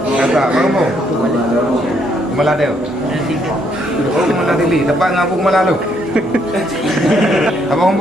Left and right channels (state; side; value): normal; both; correlation 0.72